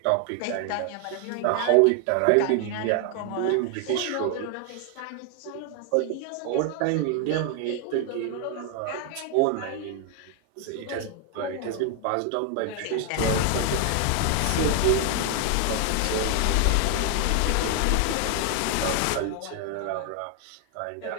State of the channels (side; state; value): both; different; correlation 0.00